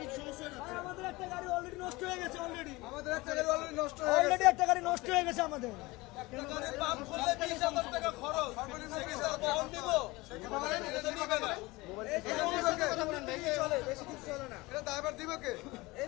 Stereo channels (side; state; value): right; quieter; 22.0 dB